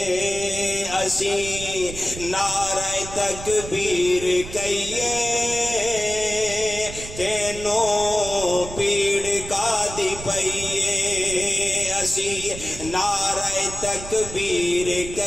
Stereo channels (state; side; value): noise; right; rumble, 11 dB below the sound